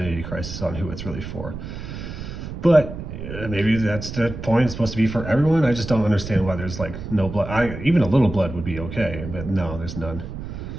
crisis on who it's really for. But maybe that's the point. It's supposed to be for everyone. I just don't understand why there's like no blood. Even a little blood would be okay, but no, there's none.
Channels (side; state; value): right; noise; rumble, 9 dB below the sound